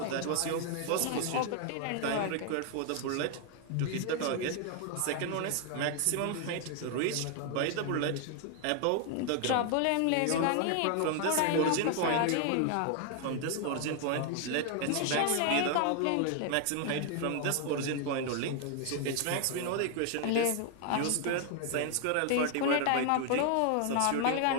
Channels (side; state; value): both; different; correlation 0.00